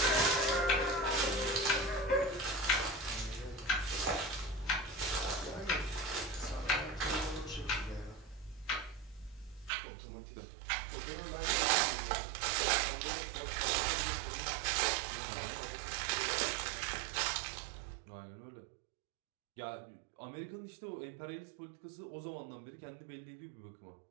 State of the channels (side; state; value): left; drops out; at 9.7 s